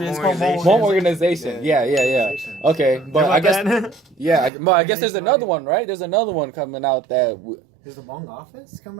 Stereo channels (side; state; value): left; drops out; at 4.5 s